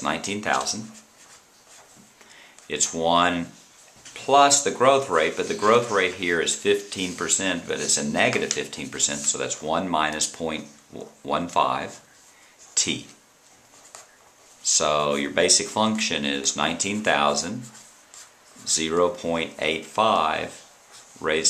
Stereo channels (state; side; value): identical; both; correlation 1.00